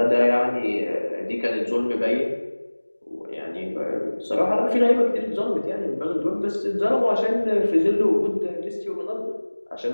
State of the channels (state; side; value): inverted; both; correlation -1.00